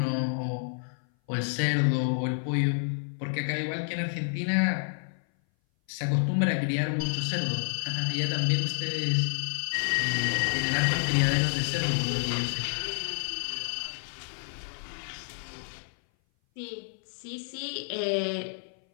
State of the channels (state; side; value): silent; right; 57 dB below the other